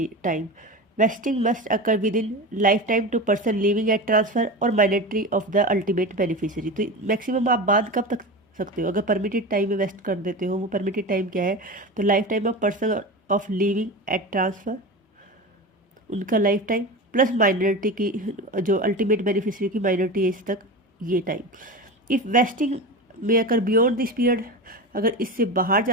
time. Vesting must occur within lifetime two person living at transfer और minority of the ultimate beneficiary. तो maximum आप बांध कब तक सकते हो? अगर परमिटेड टाइम में वेस्ट कर देते हो, वो परमिटेड टाइम क्या है? तो life time of person of living at transfer, उनका लाइफ टाइम प्लस माइनॉरिटी की जो अल्टीमेट बेनिफिशियरी की माइनॉरिटी एज तक, ये टाइम। इफ़ वेस्टिंग में अगर बियॉन्ड दिस पीरियड, अगर इससे बाहर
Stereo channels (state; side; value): normal; both; correlation 0.26